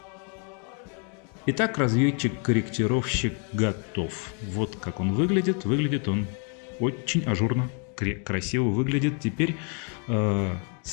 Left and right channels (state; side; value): quieter; right; 39.8 dB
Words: Итак, разведчик-корректировщик готов. Вот как он выглядит. Выглядит он очень ажурно, красиво выглядит. Теперь